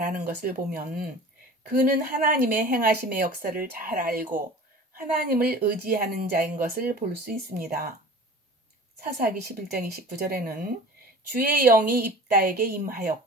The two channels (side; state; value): both; normal; correlation 0.41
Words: 것을 보면 그는 하나님의 행하심의 역사를 잘 알고 하나님을 의지하는 자인 것을 볼 수 있습니다. 사사기 11장 29절에는 주의 영이 입다에게